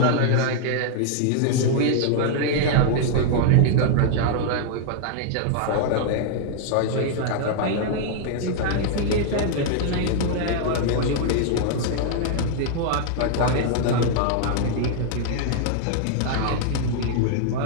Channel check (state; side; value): different; both; correlation -0.01